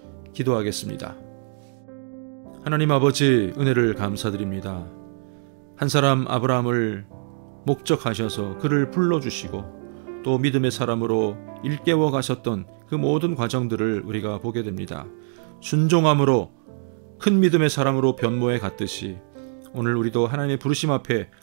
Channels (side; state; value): left; silent; digital silence